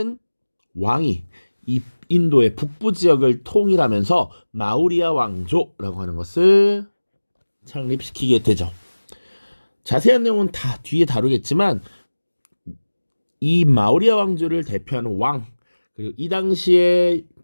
왕이 이 인도의 북부 지역을 통일하면서 마우리아 왕조라고 하는 것을 창립시키게 되죠. 자세한 내용은 다 뒤에 다루겠지만 이 마우리아 왕조를 대표하는 왕, 그리고 이 당시에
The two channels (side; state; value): both; inverted; correlation -1.00